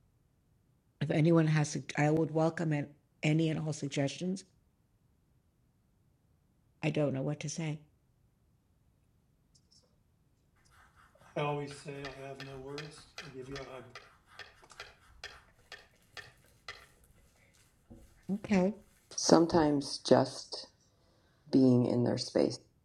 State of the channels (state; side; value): identical; both; correlation 1.00